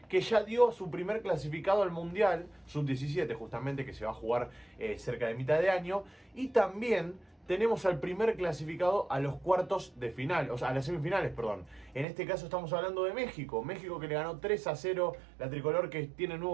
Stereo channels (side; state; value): left; drops out; at 12.1 s